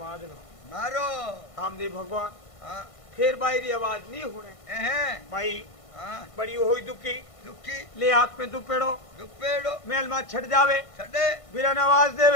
मादनो मारो रामदेव भगवान हाँ फिर बाई री आवाज नहीं होने एहे भाई हाँ बड़ी होई दुखी दुखी ले हाथ में दुपेड़ो दुपेड़ो मेल में छट जावे छड़े बिरन आवाज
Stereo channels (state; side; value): late; right; 1.5 ms